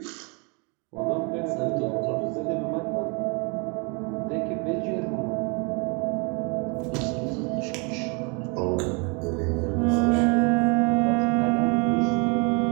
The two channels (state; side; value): quieter; left; 33.1 dB